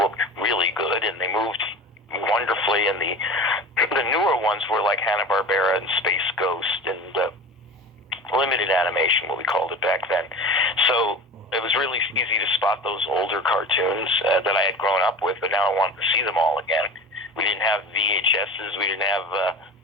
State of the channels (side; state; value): both; normal; correlation 0.34